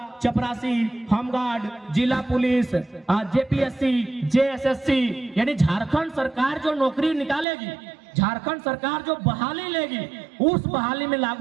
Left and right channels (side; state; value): left; drops out; at 7.5 s